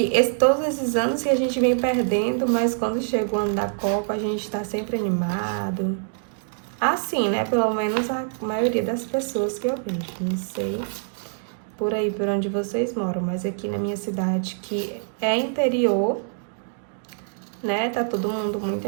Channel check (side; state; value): left; silent; digital silence